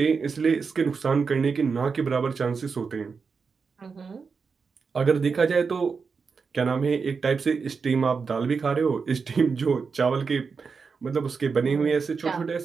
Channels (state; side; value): quieter; left; 5.3 dB